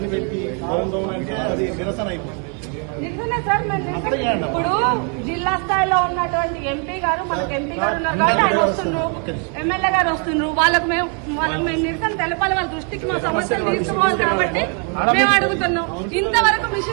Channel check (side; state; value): left; quieter; 38.7 dB